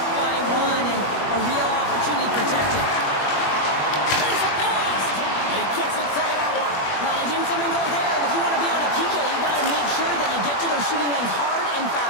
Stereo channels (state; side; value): late; right; 21 ms